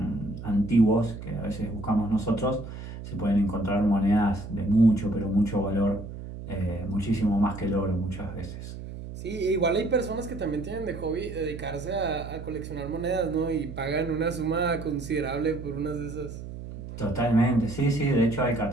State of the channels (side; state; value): right; noise; hum, 10 dB below the sound